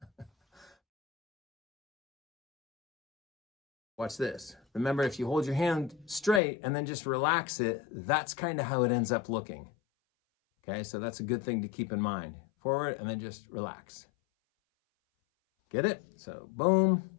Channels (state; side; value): drops out; right; at 6.4 s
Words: Watch this. Remember, if you hold your hand straight and then just relax it, that's kind of how it ends up looking. Okay, so that's a good thing to keep in mind. Forward and then just relax. Get it? So boom,